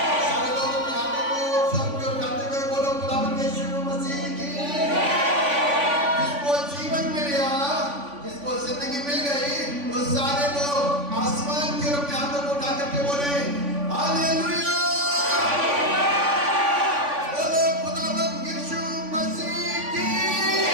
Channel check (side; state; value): left; late; 3.5 ms